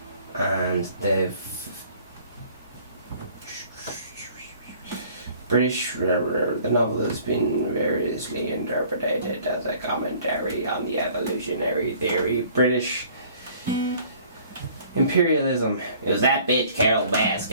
and the novel has been variously interpreted as a commentary on the evolutionary theory. British imperialism. It was that bitch Carol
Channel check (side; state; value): both; inverted; correlation -0.54